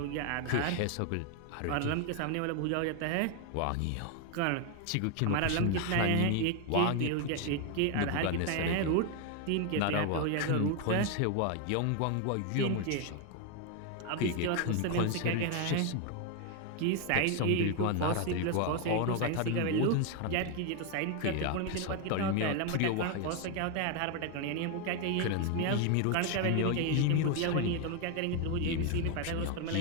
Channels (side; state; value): both; different; correlation 0.01